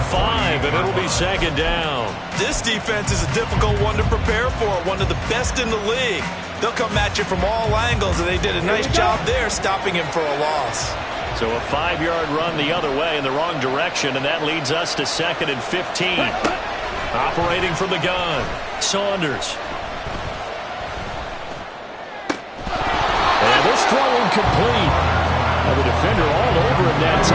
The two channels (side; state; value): both; identical; correlation 1.00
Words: 5, and it'll be second down. This defense is a difficult one to prepare for, one of the best in the league. They'll come at you from all angles, and they did a nice job there stopping him for a loss. So a 5-yard run the other way in the wrong direction, and that leads us to second and 15. Operating from the gun, Saunders. And this throw incomplete. The defender all over him that